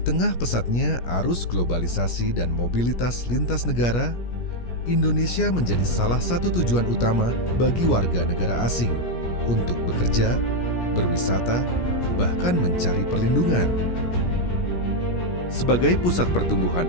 pesatnya arus globalisasi dan mobilitas lintas negara, Indonesia menjadi salah satu tujuan utama bagi warga negara asing untuk bekerja, berwisata, bahkan mencari perlindungan. Sebagai pusat pertumbuhan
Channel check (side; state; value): right; late; 17 ms